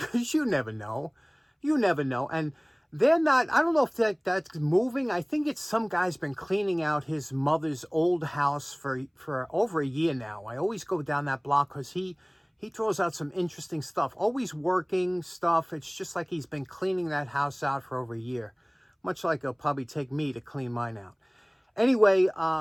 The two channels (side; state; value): both; identical; correlation 1.00